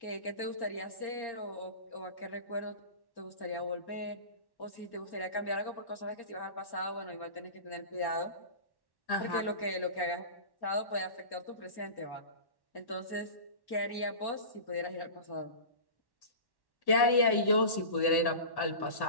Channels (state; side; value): late; right; 1.1 ms